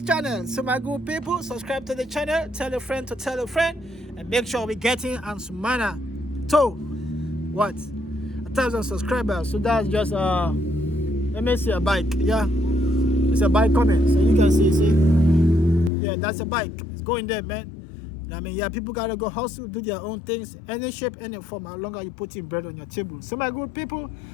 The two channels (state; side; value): drops out; right; at 15.9 s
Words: So my good people, subscribe to the channel, tell a friend to tell a friend, and make sure we're getting Ansumana to what, 1,000 subscribers. So that's just let me see a bike. Yeah, it's a bike coming, so you can see, yeah, that's a bike. It's going there, man. I mean, yeah, people gotta go hustle, do their own things, any shape, any form, how long are you putting bread on your table. So my good people,